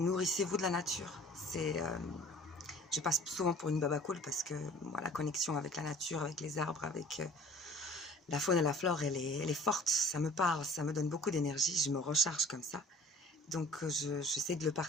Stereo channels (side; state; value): both; normal; correlation 0.49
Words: de la nature. Je passe souvent pour une baba cool parce que moi, la connexion avec la nature, avec les arbres, avec la faune et la flore, elle est forte. Ça me parle, ça me donne beaucoup d'énergie. Je me recharge comme ça. Donc, j'essaie de le